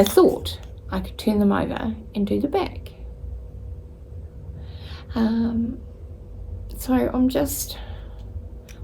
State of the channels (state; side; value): identical; both; correlation 1.00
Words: thought I could turn them over and do the back. So